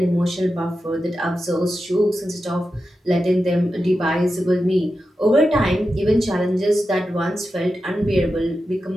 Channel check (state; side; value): normal; both; correlation 0.90